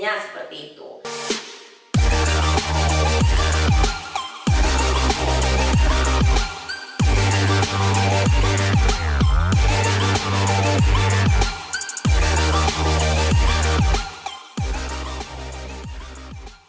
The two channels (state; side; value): identical; both; correlation 1.00